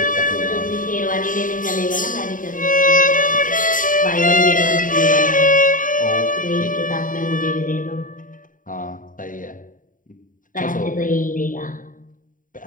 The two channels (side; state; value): right; late; 0.39 ms